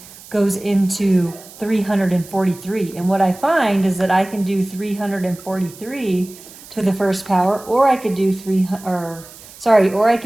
goes into 343. And what I find is that I can do 343 to the first power, or I could do or I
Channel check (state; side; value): noise; right; hiss, 19 dB below the sound